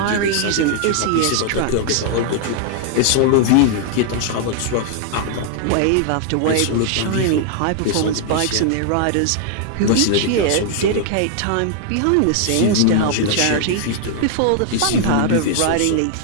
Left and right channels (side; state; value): both; different; correlation 0.00